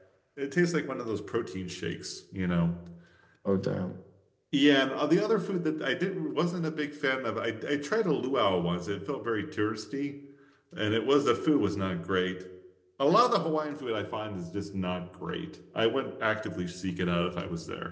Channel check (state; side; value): identical; both; correlation 1.00